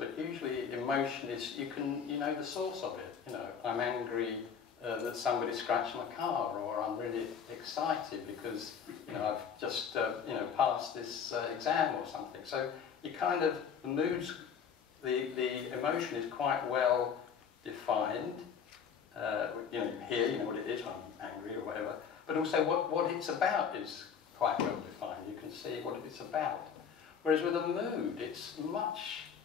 usually emotion is, you know the source of it. I'm angry that somebody scratched my car, or I'm really excited because I've just passed this exam or something. So you kind of, the moods, the emotion is quite well defined. Here, you know what it is when I'm angry or whatever. But also what it's about is quite well defined. You can see what it's about. Whereas with a mood, it's much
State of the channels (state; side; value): quieter; right; 7.1 dB